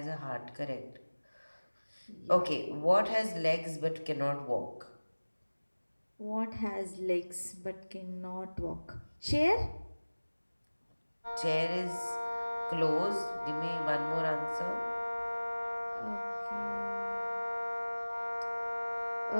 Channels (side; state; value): both; inverted; correlation -1.00